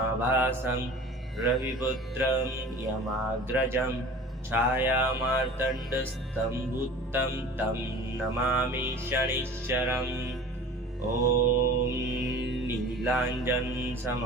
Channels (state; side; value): normal; both; correlation 0.41